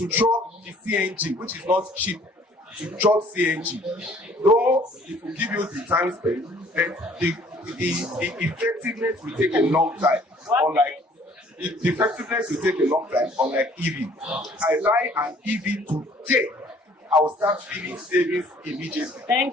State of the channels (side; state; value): both; normal; correlation 0.57